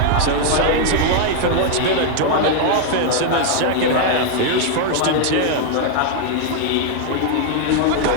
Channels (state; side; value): different; both; correlation 0.00